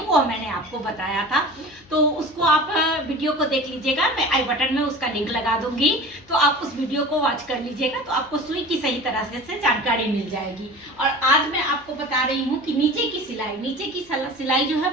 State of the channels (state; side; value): noise; left; hum, 27 dB below the sound